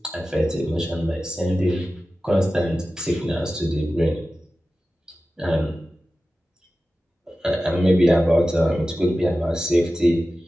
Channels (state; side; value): normal; both; correlation 0.94